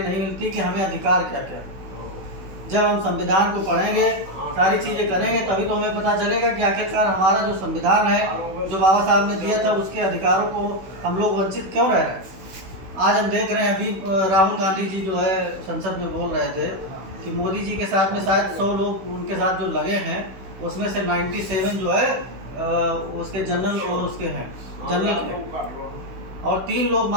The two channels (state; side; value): late; left; 16 ms